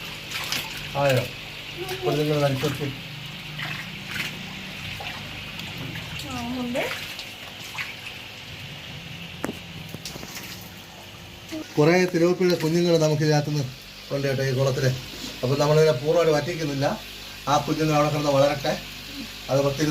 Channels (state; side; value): identical; both; correlation 1.00